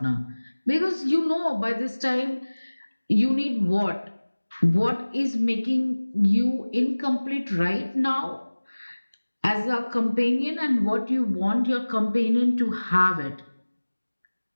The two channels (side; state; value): both; inverted; correlation -1.00